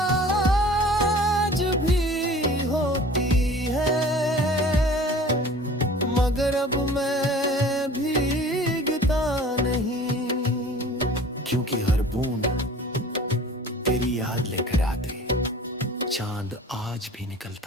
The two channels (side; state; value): both; normal; correlation 0.45